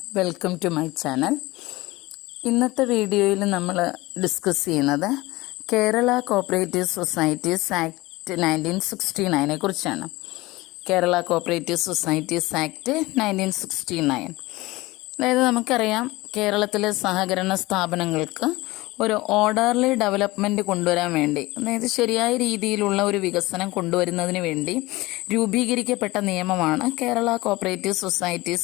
welcome to my channel. ഇന്നത്തെ വീഡിയോയിൽ നമ്മൾ ഡിസ്കസ് ചെയ്യുന്നത് കേരള കോപ്പറേറ്റീവ് സൊസൈറ്റീസ് ആക്ട് 1969 കുറിച്ചാണ്. കേരള കോപ്പറേറ്റീവ് സൊസൈറ്റീസ് ആക്ട് 1969, അതായത് നമുക്കറിയാം കേരളത്തിലെ സഹകരണ സ്ഥാപനങ്ങൾക്ക് ഒരു ഓർഡർലി ഡെവലപ്മെൻറ്റ് കൊണ്ടുവരാൻ വേണ്ടി, അതായത് ശരിയായ രീതിയിലുള്ള ഒരു വികസനം കൊണ്ടുവരുന്നതിന് വേണ്ടി രൂപീകരിക്കപ്പെട്ട നിയമമാണ് കേരള കോപ്പറേറ്റീവ്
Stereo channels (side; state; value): right; quieter; 20.4 dB